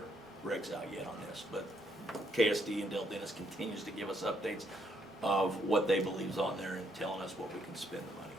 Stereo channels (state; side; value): normal; both; correlation 0.73